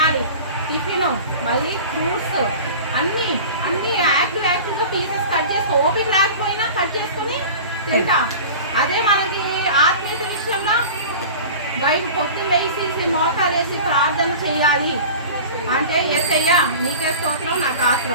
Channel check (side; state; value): both; inverted; correlation -0.37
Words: టిఫిన్ మళ్ళీ ఫ్రూట్స్ అన్నీ యాక్టివ్గా పీసెస్ కట్ చేసి ఓపిక లేకపోయినా కట్ చేసుకుని తింటాం. అదే మనకి ఆత్మీయత విషయంలో బయట పొద్దున్న వేసి మోకాలు వేసి ప్రార్థన చేయాలి అంటే యేసయ్యా నీకే స్తోత్రం నాకు